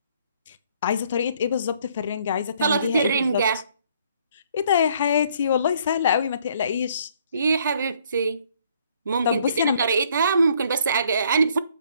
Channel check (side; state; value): both; inverted; correlation -0.64